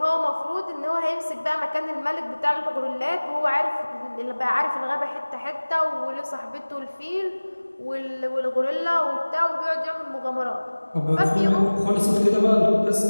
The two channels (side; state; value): both; inverted; correlation -1.00